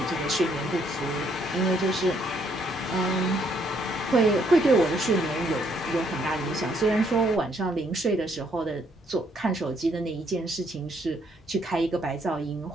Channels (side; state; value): both; normal; correlation 0.70